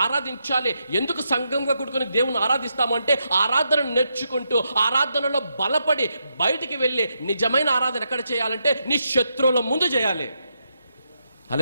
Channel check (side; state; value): both; inverted; correlation -0.82